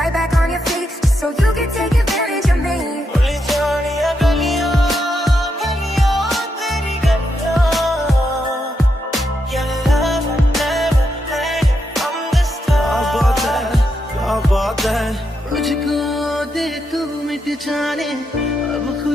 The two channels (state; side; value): normal; both; correlation 0.82